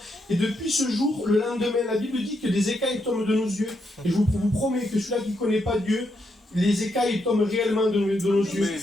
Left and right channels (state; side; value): normal; both; correlation 0.80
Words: Et depuis ce jour, le lendemain, la Bible dit que des écailles tombent de nos yeux. Et je vous promets que celui-là qui ne connaît pas Dieu, les écailles tombent réellement de nos yeux.